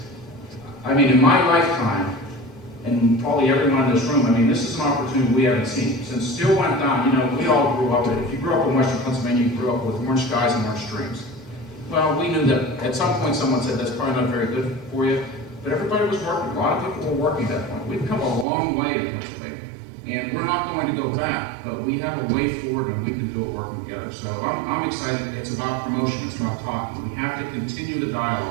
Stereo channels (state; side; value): drops out; left; at 18.4 s